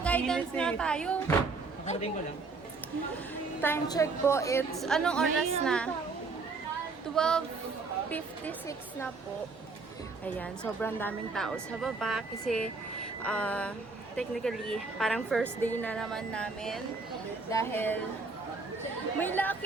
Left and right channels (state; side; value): quieter; left; 4.0 dB